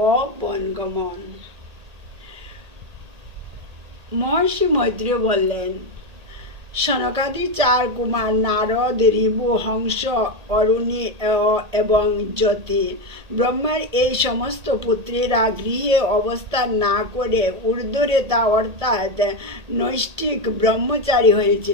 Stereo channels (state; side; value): late; left; 1.8 ms